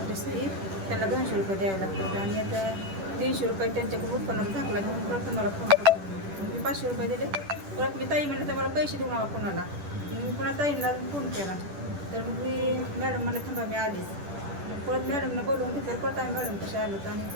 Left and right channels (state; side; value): late; left; 10 ms